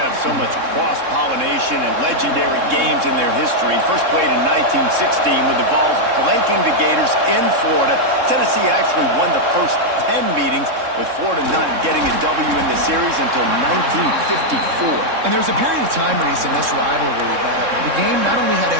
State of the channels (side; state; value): left; late; 3.7 ms